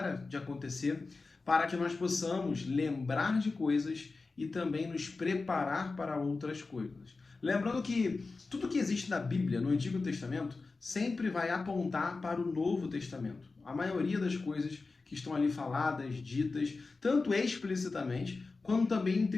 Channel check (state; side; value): quieter; right; 3.9 dB